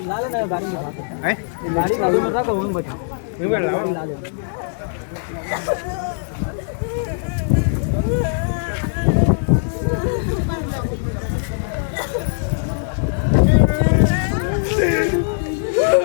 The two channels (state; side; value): silent; right; digital silence